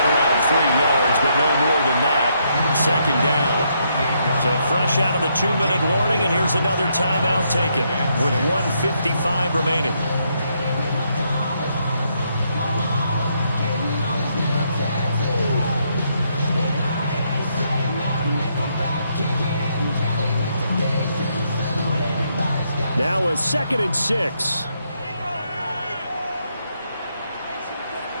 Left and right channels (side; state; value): both; inverted; correlation -0.76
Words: around 3 yards, but no more than that. 2nd down. So fresh out of the 2-minute warning, and here's another timeout taken with 1:55 remaining. Now a 2nd and 6.